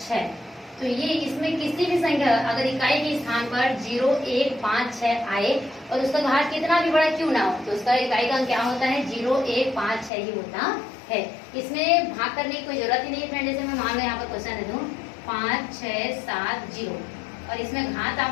6, तो ये इसमें किसी भी संख्या अगर इकाई के स्थान पर 0 1 5 6 आए और उसका घात कितना भी बड़ा क्यों ना हो, तो उसका इकाई का अंक क्या होता है, 0 1 5 6 ही होता है। इसमें भाग करने की कोई जरूरत ही नहीं है फ्रेंड। जैसे मैं मान लो यहाँ पर क्वेश्चन दे दूं 5 6 7 0, और इसमें घात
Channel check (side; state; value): right; drops out; at 10.1 s